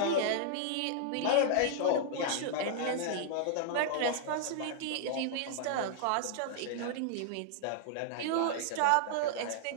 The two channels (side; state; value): both; different; correlation -0.01